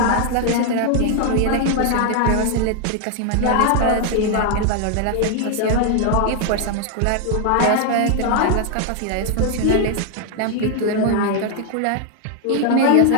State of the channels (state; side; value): different; both; correlation 0.00